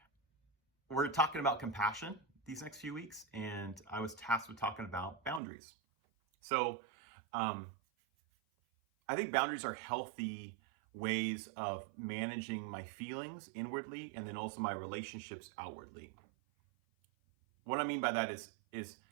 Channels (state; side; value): drops out; left; at 5.4 s